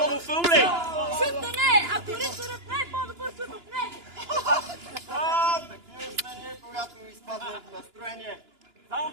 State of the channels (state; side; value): late; left; 2.9 ms